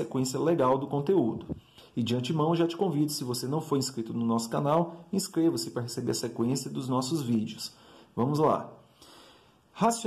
legal do conteúdo. E de antemão, já te convido, se você não for inscrito no nosso canal, inscreva-se para receber a sequência dos nossos vídeos. Vamos lá.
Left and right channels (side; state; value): both; identical; correlation 1.00